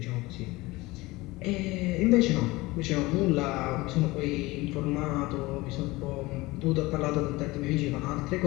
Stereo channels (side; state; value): right; quieter; 21.1 dB